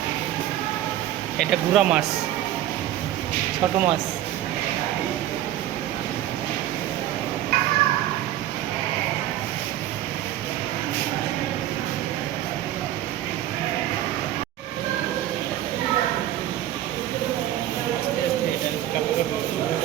এটা গুড়া মাছ, ছোট মাছ।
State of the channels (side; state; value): left; quieter; 13.0 dB